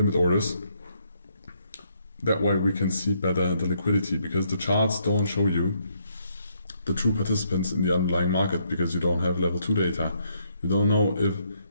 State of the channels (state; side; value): inverted; both; correlation -0.72